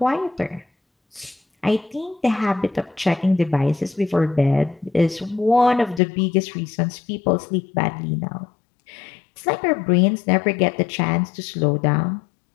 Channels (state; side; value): drops out; right; at 6.0 s